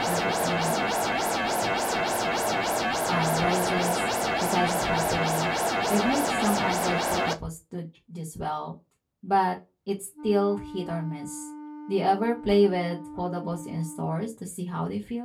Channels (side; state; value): both; identical; correlation 1.00